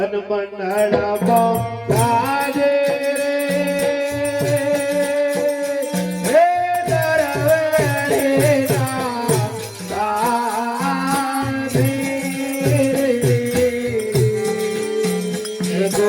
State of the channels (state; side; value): identical; both; correlation 1.00